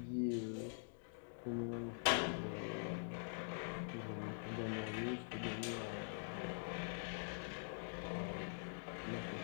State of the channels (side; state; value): right; silent; digital silence